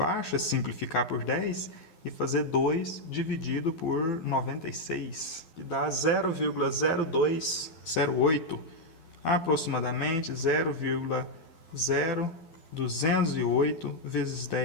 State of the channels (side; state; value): right; late; 12 ms